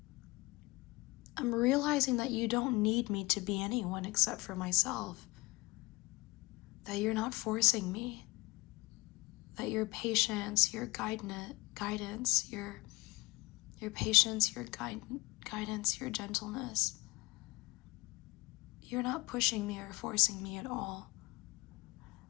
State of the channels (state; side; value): quieter; right; 23.2 dB